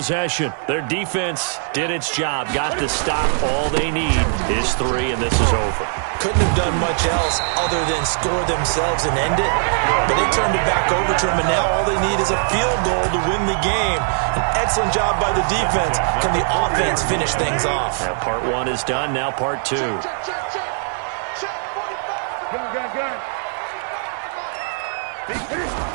Their defense did its job, got the stop. All they need is 3, and this is over. Couldn't have done much else other than score themselves and end it. But they turned it back over to them, and now all they need is a field goal to win the game. An excellent job by the defense. Can the offense finish things off? Yeah, part 1 is done, now part 2.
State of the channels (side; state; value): left; silent; 65 dB below the other